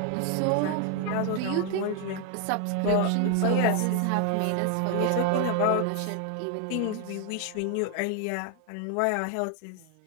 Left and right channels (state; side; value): different; both; correlation 0.00